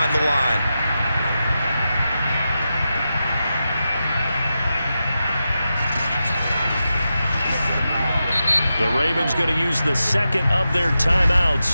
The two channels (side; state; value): both; inverted; correlation -0.90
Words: the line. The Ravens going to use the 2nd of their